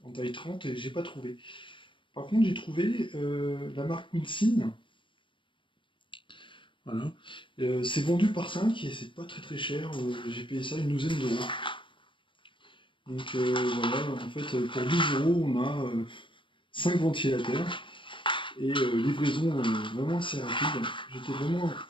taille 30 et j'ai pas trouvé. Par contre, j'ai trouvé la marque Winsin. Voilà. C'est vendu par 5 et c'est pas très très cher. J'ai payé ça une douzaine d'euros. Donc voilà, en fait, pour 12 euros, on a 5 ventilateurs et livraison vraiment assez rapide. J'étais vraiment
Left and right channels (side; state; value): right; late; 0.24 ms